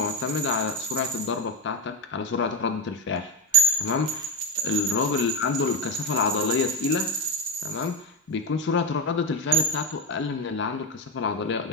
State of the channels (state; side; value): normal; both; correlation 0.13